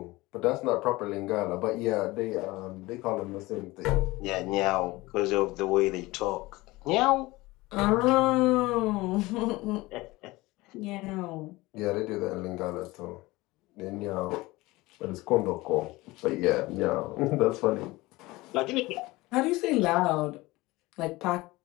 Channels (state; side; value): quieter; right; 20.7 dB